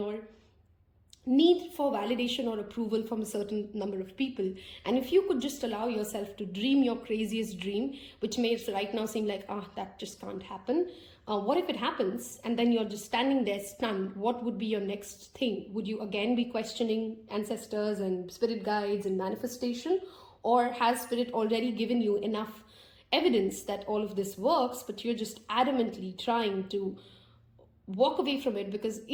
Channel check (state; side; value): identical; both; correlation 1.00